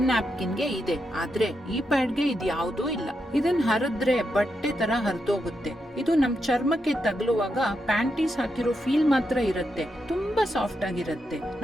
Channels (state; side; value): normal; both; correlation 0.84